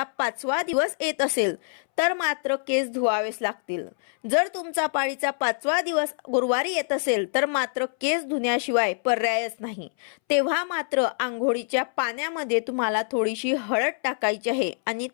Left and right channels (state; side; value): silent; right; 61 dB below the other